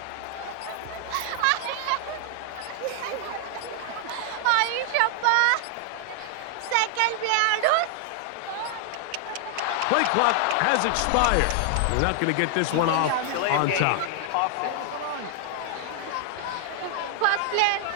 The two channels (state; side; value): different; both; correlation 0.00